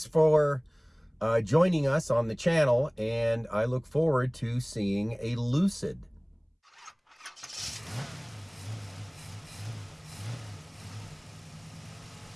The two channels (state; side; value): identical; both; correlation 1.00